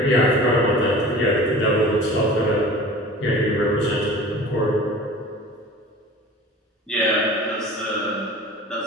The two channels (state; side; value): normal; both; correlation 0.40